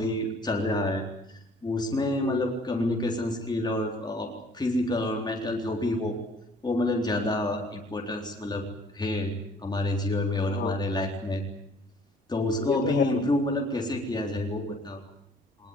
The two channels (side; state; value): both; normal; correlation 0.56